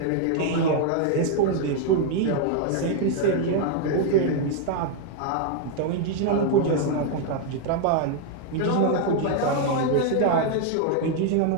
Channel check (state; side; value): different; both; correlation 0.00